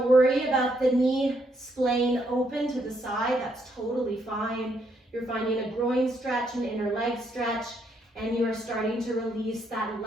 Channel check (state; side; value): normal; both; correlation 0.74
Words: worry about the knee splaying open to the side. That's totally fine. You're finding a groin stretch, an inner leg stretch, and you are starting to release that